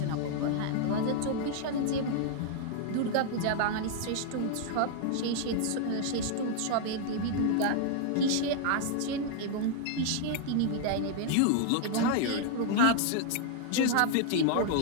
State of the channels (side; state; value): both; different; correlation 0.00